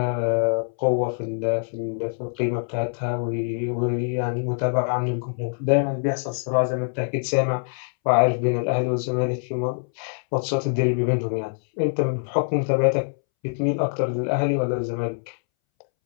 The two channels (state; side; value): silent; right; 62 dB below the other